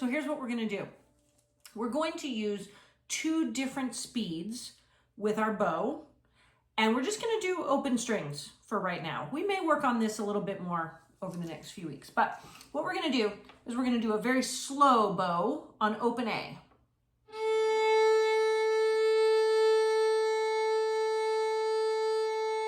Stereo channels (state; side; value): identical; both; correlation 1.00